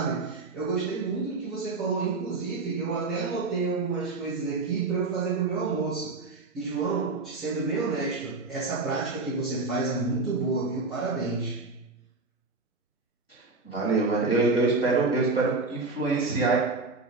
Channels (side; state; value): left; quieter; 3.7 dB